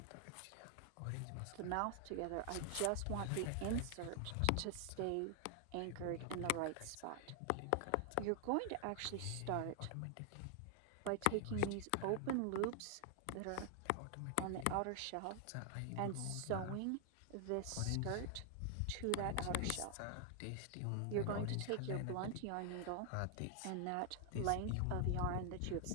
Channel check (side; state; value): both; different; correlation 0.00